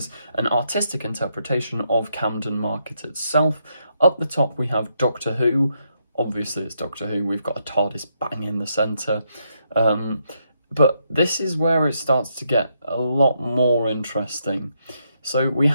an artistic interpretation of Camden Market itself. Up the top we have Doctor Who. Obviously it's Doctor Who, we've got a TARDIS bang in the centre. But this is where it starts to get a lot more interesting. So we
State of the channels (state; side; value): inverted; both; correlation -0.78